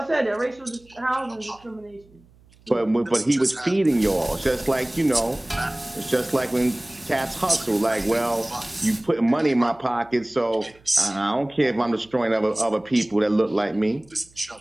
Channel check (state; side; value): noise; right; hum, 29 dB below the sound